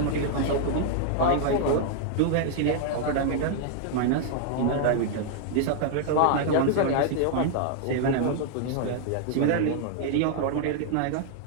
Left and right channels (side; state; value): both; different; correlation -0.01